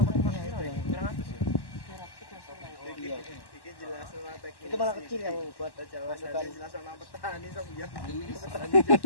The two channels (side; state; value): right; late; 1.1 ms